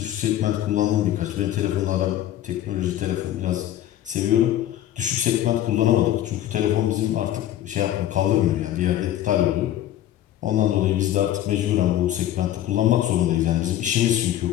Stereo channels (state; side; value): quieter; right; 12.5 dB